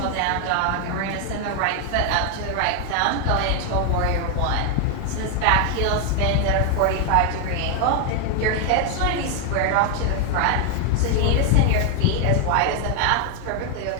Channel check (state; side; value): different; both; correlation 0.01